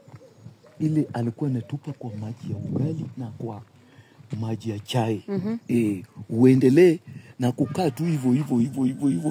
ile alikuwa anatupa kwa maji ya ugali na kwa maji ya chai. Uendelee na kukaa tu hivyo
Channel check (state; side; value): identical; both; correlation 1.00